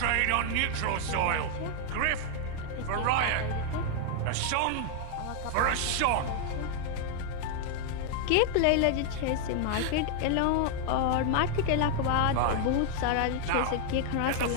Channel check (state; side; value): different; both; correlation 0.00